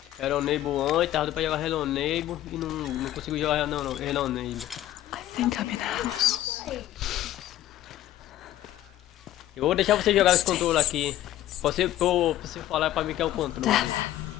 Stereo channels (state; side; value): quieter; right; 13.5 dB